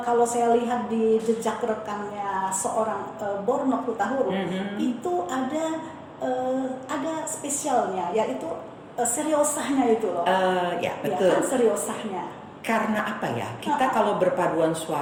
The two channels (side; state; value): both; identical; correlation 1.00